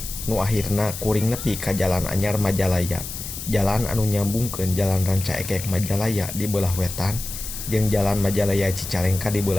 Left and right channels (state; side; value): noise; left; hiss, 8 dB below the sound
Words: Nu akhirna kuring nepi ka Jalan Anyar Majalaya. Jalan anu nyambungkeun Jalan Ranca Ekek Majalaya di beulah wetan jeung Jalan Majalaya Cicalengka di